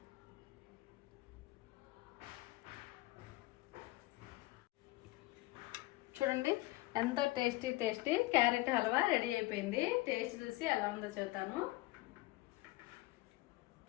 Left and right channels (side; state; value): right; quieter; 19.8 dB